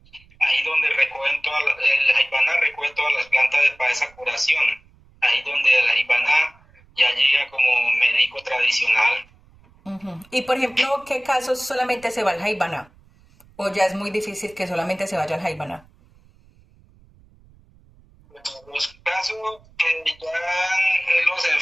Ahí donde recogen el Jaibaná recoge todas las plantas para esa curación. Ahí donde el Jaibaná ya llega como médico tradicional. Ujú. Y por ejemplo, ¿qué casos solamente se va al Jaibaná? ¿O ya es muy difícil que solamente se vaya al Jaibaná? Los casos que ya los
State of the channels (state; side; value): noise; right; rumble, 29 dB below the sound